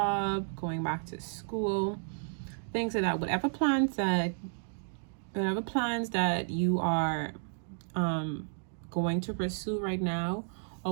going back to school, things like that, whatever plans that you are going to pursue right now,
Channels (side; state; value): left; silent; digital silence